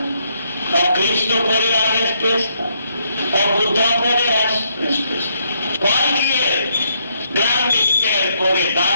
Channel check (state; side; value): inverted; both; correlation -0.74